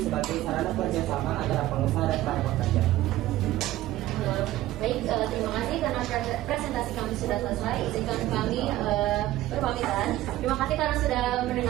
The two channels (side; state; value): left; quieter; 15.3 dB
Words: sebagai sarana kerjasama antara pengusaha dan para pekerja. Baik, terima kasih karena presentasi kami sudah selesai. Izinkan kami berpamitan. Terima kasih karena sudah